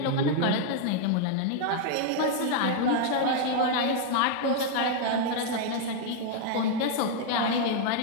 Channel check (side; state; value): both; different; correlation 0.00